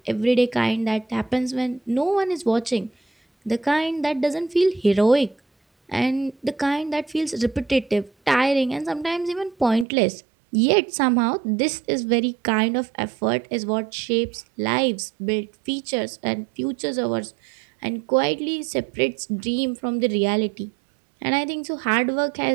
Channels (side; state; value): left; drops out; at 9.9 s